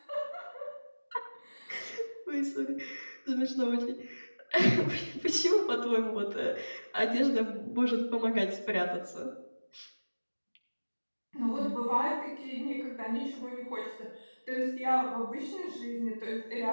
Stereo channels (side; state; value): both; inverted; correlation -1.00